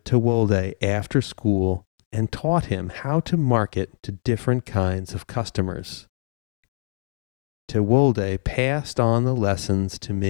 Tewolde after school and taught him how to market to different kinds of customers. Tewolde passed on the lessons to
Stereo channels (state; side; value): silent; right; digital silence